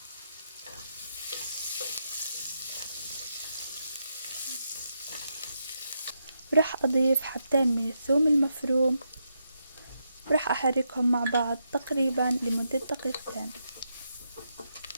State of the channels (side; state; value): both; inverted; correlation -0.82